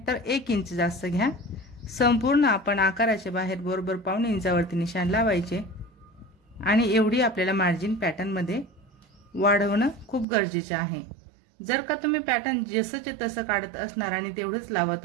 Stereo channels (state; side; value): drops out; left; at 10.2 s